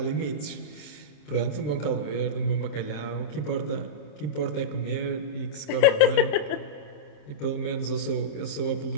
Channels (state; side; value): late; right; 27 ms